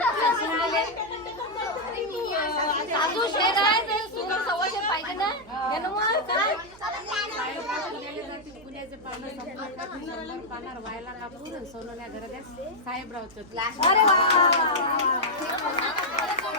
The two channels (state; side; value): noise; right; hum, 23 dB below the sound